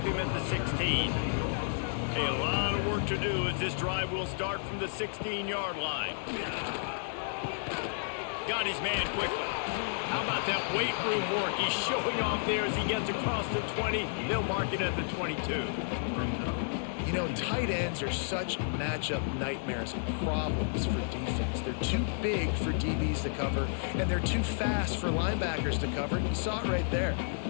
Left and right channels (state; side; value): silent; right; digital silence